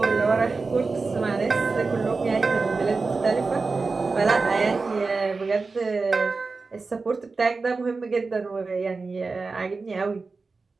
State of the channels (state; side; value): quieter; left; 4.1 dB